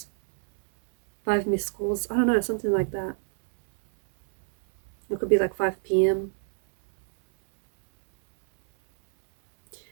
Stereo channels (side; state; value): left; silent; digital silence